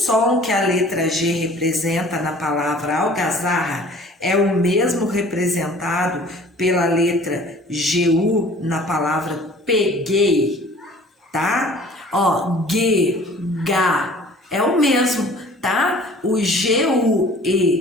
que a letra G representa na palavra algazarra é o mesmo representado pela letra GU na palavra peguei, tá? Ó, G, Ga, é o mesmo, tá? O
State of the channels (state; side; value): normal; both; correlation 0.49